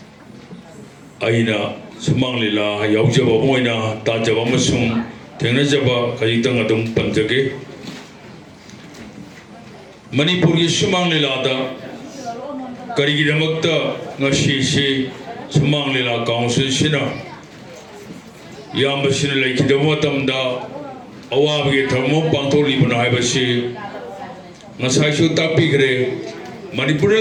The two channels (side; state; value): both; identical; correlation 1.00